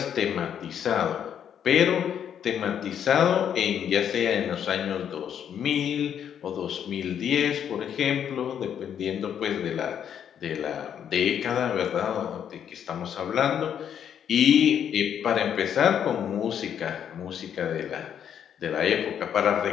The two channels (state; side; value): quieter; right; 8.9 dB